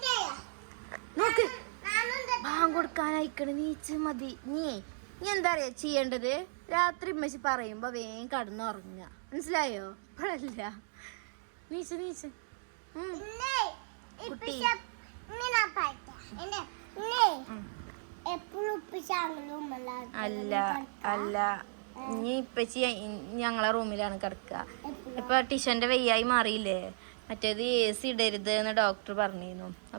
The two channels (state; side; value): silent; left; digital silence